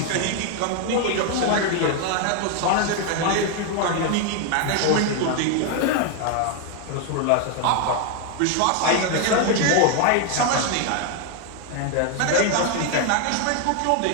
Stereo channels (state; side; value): different; both; correlation 0.01